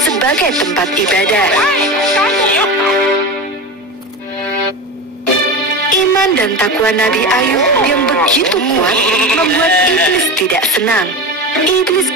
tempat ibadah. Iman dan takwa Nabi Ayub yang begitu kuat membuat iblis tidak senang. Iblis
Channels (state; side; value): normal; both; correlation 0.24